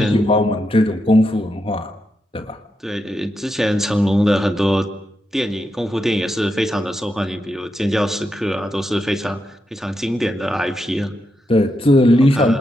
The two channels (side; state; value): both; normal; correlation 0.84